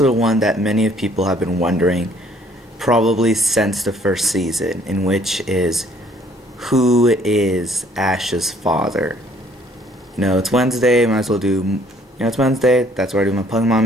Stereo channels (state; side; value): normal; both; correlation 0.61